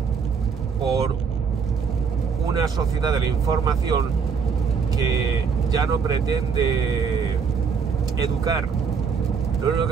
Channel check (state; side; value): quieter; left; 5.9 dB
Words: por una sociedad de la información que ya no pretende educar, lo único